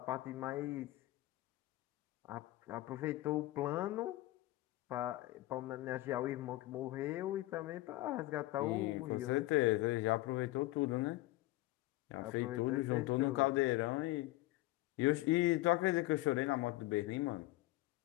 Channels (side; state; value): right; quieter; 18.1 dB